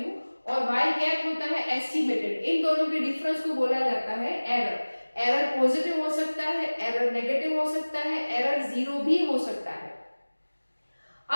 और y कैप होता है एस्टिमेटेड। इन दोनों के डिफरेंस को बोला जाता है एरर। एरर पॉजिटिव हो सकता है, एरर नेगेटिव हो सकता है, एरर जीरो भी हो सकता है।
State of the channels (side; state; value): both; inverted; correlation -1.00